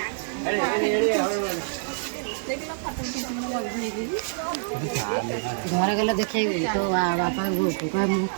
घर गला देखे तो बापा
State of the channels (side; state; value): left; silent; digital silence